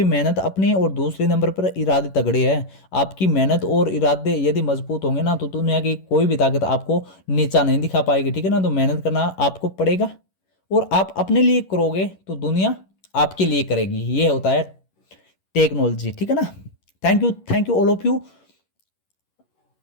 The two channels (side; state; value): right; late; 11 ms